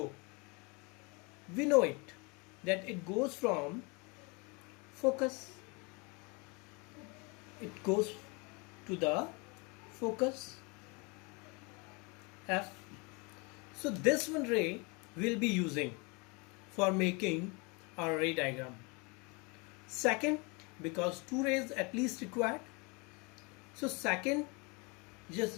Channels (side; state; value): right; quieter; 29.7 dB